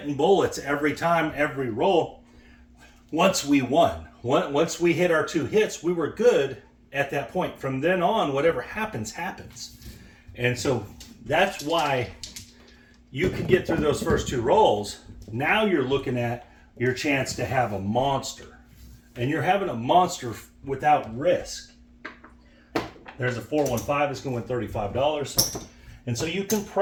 bullets every time, every roll. Once we won, once we hit our 2 hits, we were good at that point. From then on, whatever happens, happens. And so that's why you can get through those first 2 rolls. Now you're looking at your chance to have a monster. And you're having a monster without risk. There's a 415, it's going to win $35. And so you can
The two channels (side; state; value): both; identical; correlation 1.00